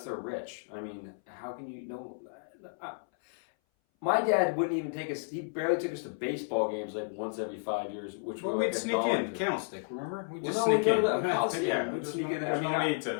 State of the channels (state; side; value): silent; right; 56 dB below the other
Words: they're rich. I mean, how can you know? My dad wouldn't even take us. He barely took us to baseball games like once every 5 years, which were like we'd sneak in, candlestick. Remember? We'd sneak in. We'd sneak in. There's no need